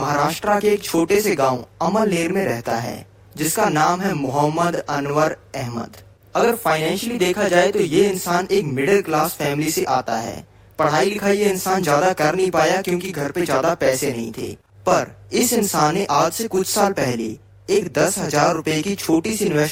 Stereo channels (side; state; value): both; identical; correlation 1.00